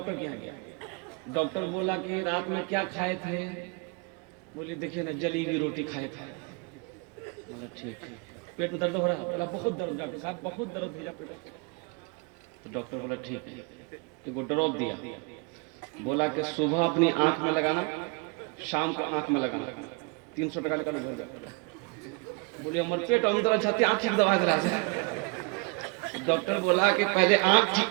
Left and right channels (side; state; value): left; quieter; 30.5 dB